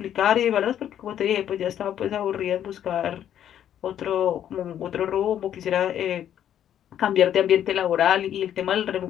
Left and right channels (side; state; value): right; quieter; 10.3 dB